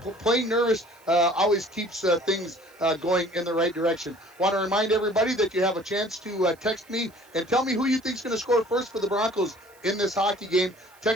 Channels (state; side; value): noise; right; hiss, 29 dB below the sound